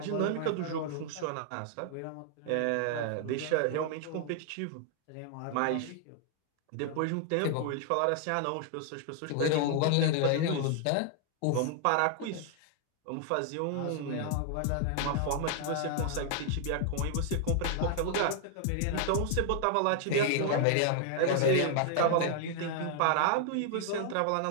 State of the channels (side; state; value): both; different; correlation 0.00